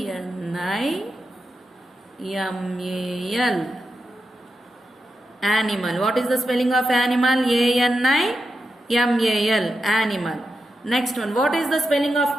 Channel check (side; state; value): both; normal; correlation 0.88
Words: Animal. What is the spelling of animal? A-N-I-M-A-L. Animal. Next one. What is the spelling